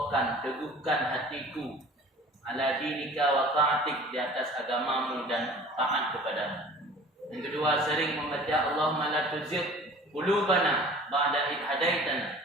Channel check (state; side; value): normal; both; correlation 0.45